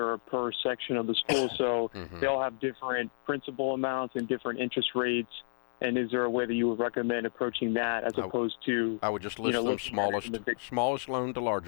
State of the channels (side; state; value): right; silent; digital silence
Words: or per section of the school, so Mhm. they all have different principal amounts and different interest rates. And is there a way that you would recommend approaching that as opposed to? I would just list them looking at it smallest in the big- smallest loan to